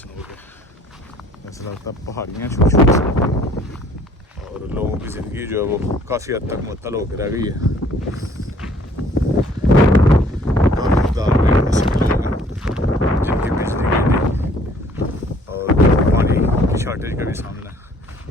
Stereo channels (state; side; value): normal; both; correlation 0.58